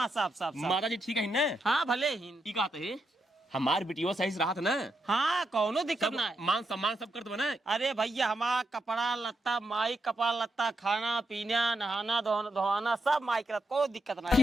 सब माता जी ठीक है ना। हाँ भले ही ठीक है हमार बिटिया सही से रहा था ना। हाँ कौनो दिक्कत सब ना है। मान सम्मान सब करते बना। अरे भैया हमारा कपड़ा लत्ता माई कपड़ा लत्ता खाना पीना नहाना धोना सब माई करत कोई दिक्कत ना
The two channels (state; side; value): normal; both; correlation 0.83